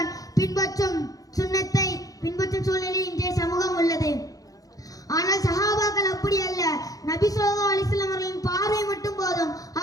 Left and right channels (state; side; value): late; right; 0.17 ms